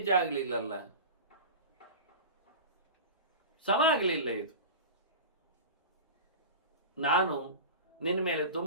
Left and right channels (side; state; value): both; inverted; correlation -0.30